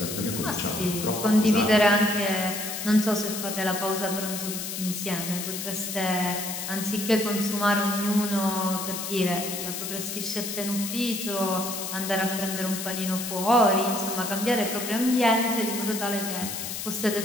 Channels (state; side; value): noise; left; hiss, 5 dB below the sound